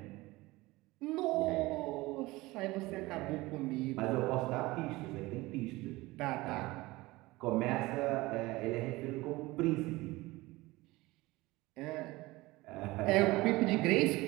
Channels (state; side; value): quieter; left; 20.4 dB